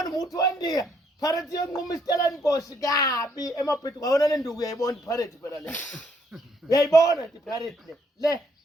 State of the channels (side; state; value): both; normal; correlation 0.70